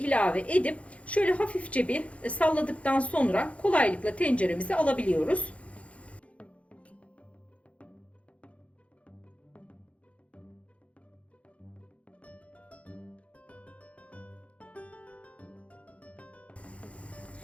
edip şöyle hafifçe bir salladıktan sonra kolaylıkla tenceremize alabiliyoruz.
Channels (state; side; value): late; right; 0.064 ms